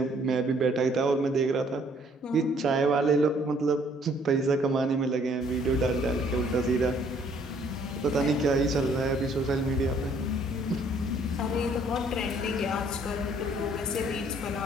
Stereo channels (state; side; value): normal; both; correlation 0.62